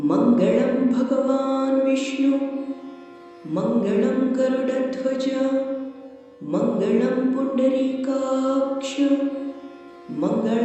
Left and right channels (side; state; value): both; identical; correlation 1.00